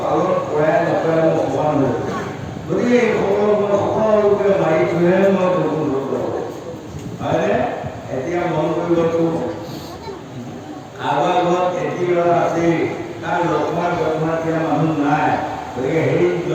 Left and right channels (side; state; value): both; identical; correlation 1.00